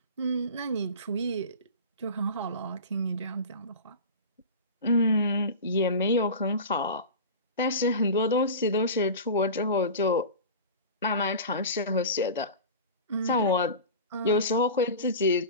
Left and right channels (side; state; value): both; inverted; correlation -0.31